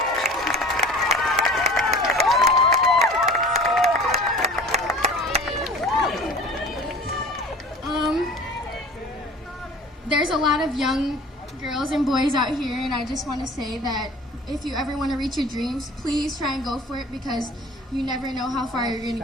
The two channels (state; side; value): normal; both; correlation 0.42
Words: There's a lot of young girls and boys out here, and I just want to say that if you ever want to reach your dreams, please try and go for it, because you never know how far you're going to